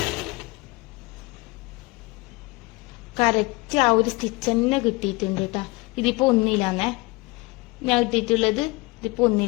കറക്റ്റ് ആ ഒരു സ്റ്റിച്ച് തന്നെ കിട്ടിയിട്ടുണ്ട് കേട്ടാ. ഇതിപ്പോ 1 ഞാൻ ഇട്ടിട്ടുള്ളത്. ഇതിപ്പോ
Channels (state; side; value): quieter; right; 24.5 dB